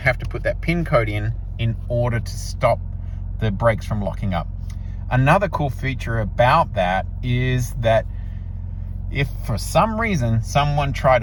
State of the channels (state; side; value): identical; both; correlation 1.00